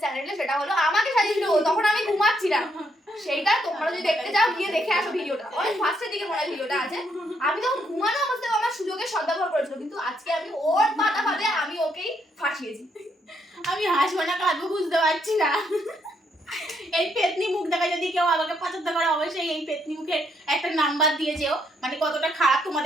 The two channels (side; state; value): both; normal; correlation 0.74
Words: চ্যানেলে, সেটা হলো আমাকে সাজিয়েছিল ও, তখন আমি ঘুমাচ্ছিলাম। সেইটা তোমরা যদি দেখতে চাও গিয়ে দেখে আসো ভিডিওটা, অনেক ফার্স্টের দিকে মনে হয় ভিডিওটা আছে। আমি তখন ঘুমানো অবস্থায় আমার সুযোগের সদ্ব্যবহার করেছিল, কিন্তু আজকে আমি ওর পাতা পাতে আমি ওকেই ফাঁসিয়েছি। আমি হাসবো না কাঁদবো বুঝতে পারছি না। এই পেতনি মুখ দেখা যদি কেউ আমাকে পছন্দ করে অবশ্যই এই পেতনি মুখের একটা নাম্বার দিয়ে যেও, মানে কতটা খারাপ